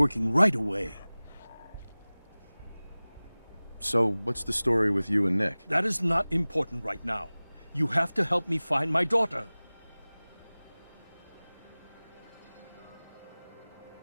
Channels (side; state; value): both; inverted; correlation -0.99